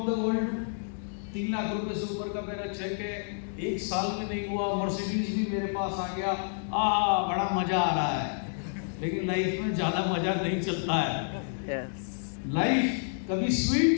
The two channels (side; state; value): right; silent; digital silence